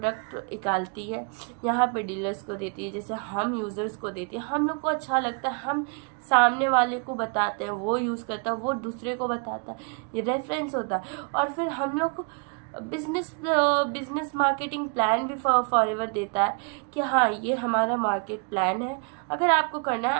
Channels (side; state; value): left; quieter; 36.9 dB